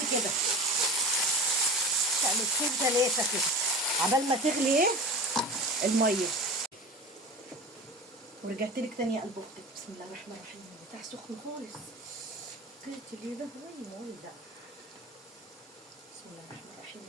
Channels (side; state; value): both; normal; correlation 0.34